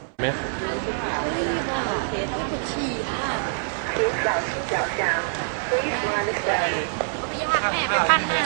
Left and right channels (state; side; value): silent; left; 62 dB below the other